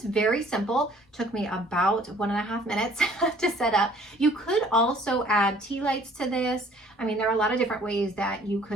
very simple. Took me about 1.5 minutes to set up. You could also add tea lights to this. I mean, there are a lot of different ways that you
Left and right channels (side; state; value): both; normal; correlation 0.56